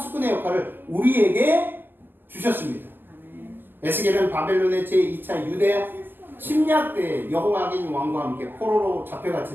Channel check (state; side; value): late; left; 0.092 ms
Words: 역할을 우리에게 주셨습니다. 에스겔은 바벨론의 제2차 유대 침략 때 여호야긴 왕과 함께 포로로